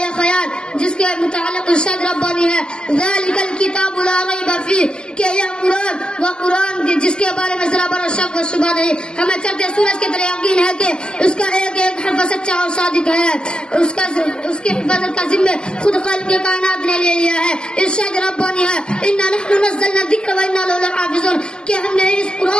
خیال جس کے متعلق ارشاد ربانی ہے ذالک الکتاب لا ریب فیہ, کہ یہ قرآن وہ قرآن جس کے بارے میں ذرا برا شک و شبہ نہیں. ہمیں چڑھتے سورج کے طرح یقین ہے کہ اس کا ایک ایک حرف سچا اور صادق ہے. اس کی حفاظت کا ذمہ خود خالق کے کائنات نے لے لیا ہے. ارشاد ربانی ہے انا نحن نزلنا الذکر وانا لہ لحافظون, کہ ہم نے اس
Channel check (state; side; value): late; right; 0.047 ms